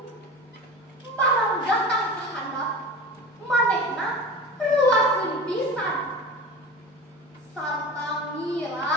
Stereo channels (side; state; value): both; normal; correlation 0.32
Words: barang datang ka handap, manehna reuaseun pisan. Sarta